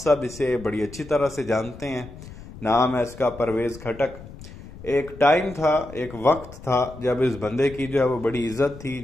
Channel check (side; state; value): left; noise; rumble, 16 dB below the sound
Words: اسے بڑی اچھی طرح سے جانتے ہیں، نام ہے اس کا پرویز خٹک۔ ایک ٹائم تھا، ایک وقت تھا جب اس بندے کی جو ہے وہ بڑی عزت تھی،